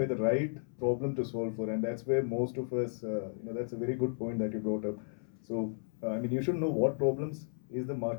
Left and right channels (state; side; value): silent; right; 55 dB below the other